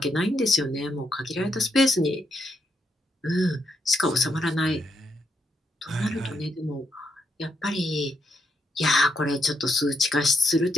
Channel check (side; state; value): both; normal; correlation 0.78